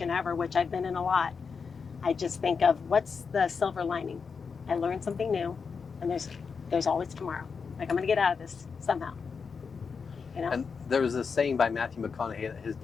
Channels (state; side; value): quieter; right; 5.5 dB